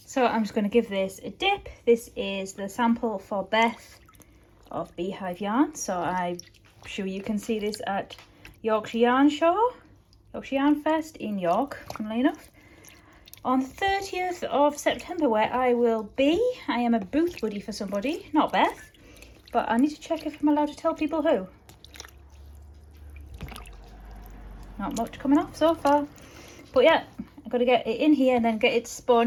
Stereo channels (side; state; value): both; identical; correlation 1.00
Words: So I'm just going to give this a dip. This is the sample for Beth of Beehive Yarn. So I'm sure you can see this at Yorkshire Yarn Fest in York, funnily enough, on the 30th of September, where I will be. I am a booth buddy for somebody, not Beth, but I need to check if I'm allowed to tell people who. Not much coming off so far, but yeah, I've got to get it in here and then get it